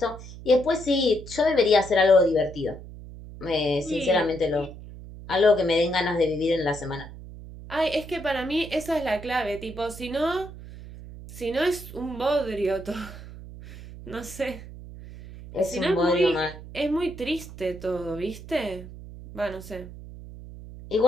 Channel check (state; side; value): noise; right; hum, 14 dB below the sound